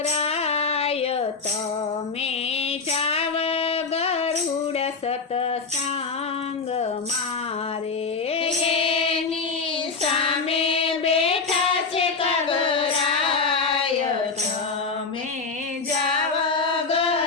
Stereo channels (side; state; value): right; quieter; 4.5 dB